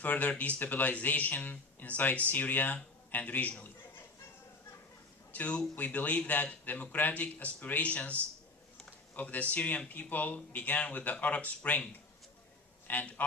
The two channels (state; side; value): quieter; right; 3.4 dB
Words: destabilization inside Syria and regionally. Two, we believe that democratic aspirations of the Syrian people began with the Arab Spring and